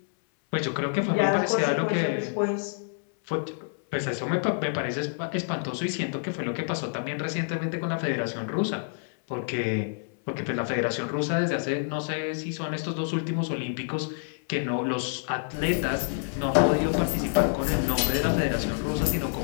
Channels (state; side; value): silent; right; 59 dB below the other